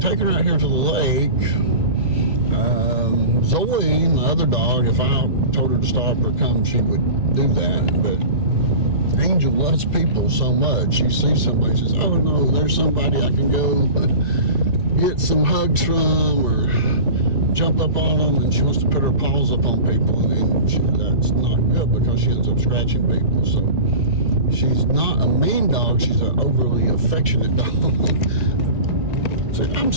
her out here to the lake, Zoe, my other dog, if I told her to stop or come, she would do that. But Angel loves people so much. She sees somebody, says, oh no, there's somebody I can go get some hugs from, or jump up on them, and she wants to put her paws up on people, and then that's not good because she ends up scratching people. So she's not a mean dog, she's an overly affectionate dog. Say, I'm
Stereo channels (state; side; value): late; left; 2.0 ms